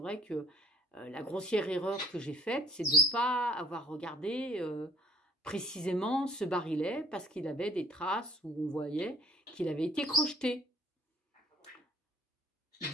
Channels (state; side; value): normal; both; correlation 0.54